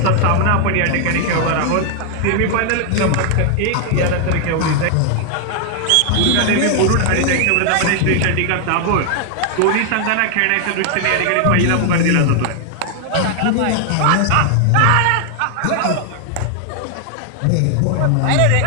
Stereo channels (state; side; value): different; both; correlation 0.00